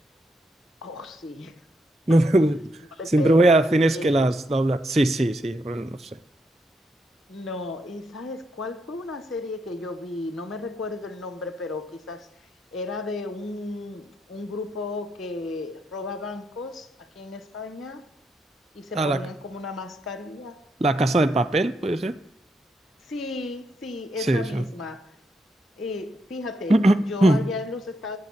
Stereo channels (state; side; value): normal; both; correlation 0.80